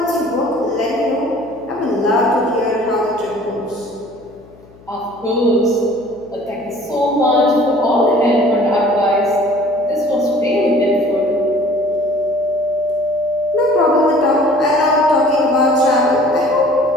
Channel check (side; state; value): left; noise; hum, 25 dB below the sound